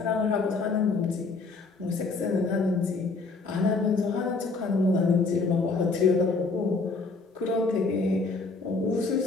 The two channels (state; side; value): quieter; right; 3.9 dB